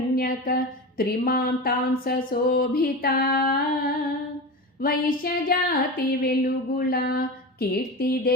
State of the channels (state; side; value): normal; both; correlation 0.25